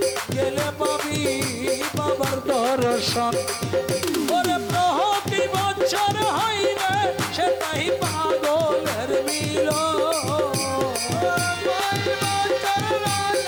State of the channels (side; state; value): both; identical; correlation 1.00